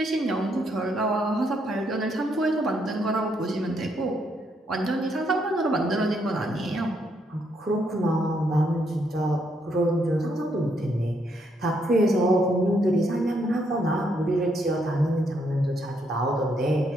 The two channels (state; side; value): normal; both; correlation 0.75